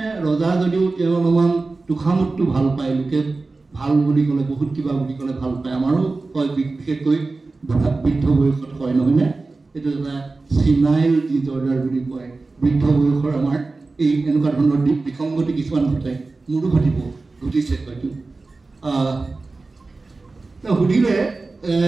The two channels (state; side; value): quieter; left; 3.6 dB